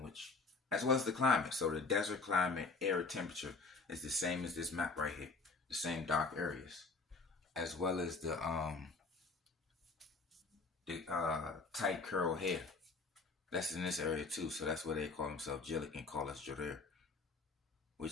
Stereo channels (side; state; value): right; quieter; 3.9 dB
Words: as well as the climate. So the desert climate, air temperature is the same as this map right here, the same dark areas, as well as the tight curl hair. That's in this area too, so that's where they call themselves Gillick and call us Jareer,